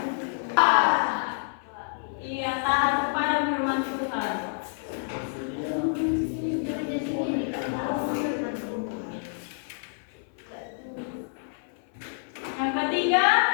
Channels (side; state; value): right; silent; 59 dB below the other